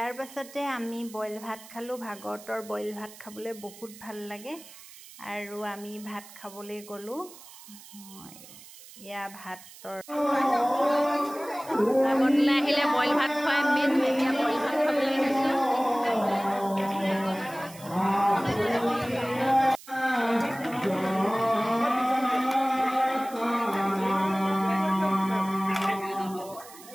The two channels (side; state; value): right; noise; hiss, 19 dB below the sound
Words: পাছতে আমি বইল ভাত খালোঁ। ভাগৱতৰ বইল ভাত খাবলৈ বহুত ভাল লাগে আৰু আমি ভাত খাবলৈ গ'লোঁ। এয়া ভাতৰ ভাগৱতলৈ আহিলে বইল ভাত খুৱাই মেইন, এতিয়া বইল ভাত খাবলৈ গৈছোঁ।